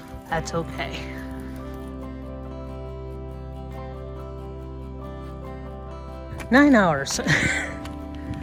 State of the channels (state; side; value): identical; both; correlation 1.00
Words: that's okay. Nine hours.